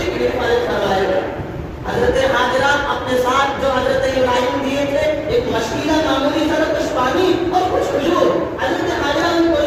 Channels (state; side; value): identical; both; correlation 1.00